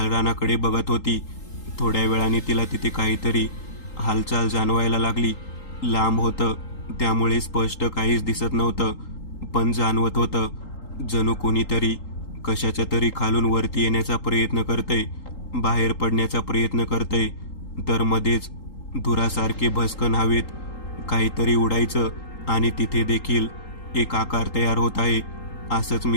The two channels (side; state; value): right; late; 3.8 ms